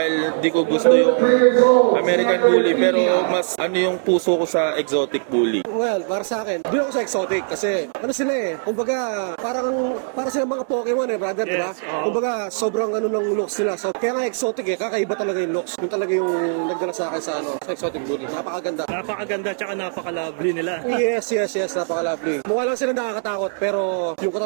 di ko gusto yung American Bully, pero mas yung puso ko sa exotic bully. Well, para sa akin, doon ako sa exotic kasi sila kumbaga para sila mga Pokemon brother, yes, diba? Kumbaga sobrang ng looks nila. So kaya nga exotic kakaiba talaga yung looks. Yung talaga yung nagdala sa akin sa exotic bully. Napakaganda. Napakaganda tsaka napaka-lovely nila. Yes, napaka-lovely. Mukha lang sila nakakatakot pero yung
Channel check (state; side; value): silent; left; 65 dB below the other